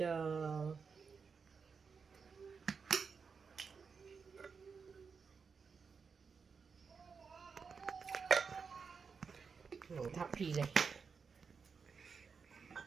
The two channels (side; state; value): left; quieter; 5.5 dB